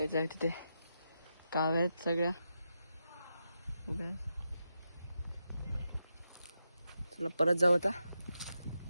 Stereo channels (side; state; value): both; inverted; correlation -0.87